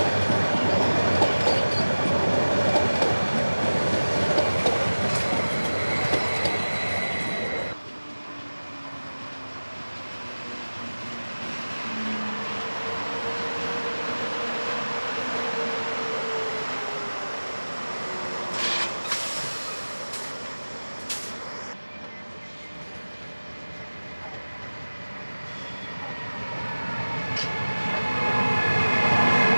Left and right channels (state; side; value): inverted; both; correlation -1.00